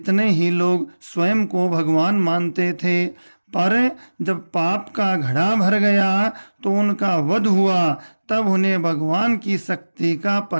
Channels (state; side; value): inverted; both; correlation -1.00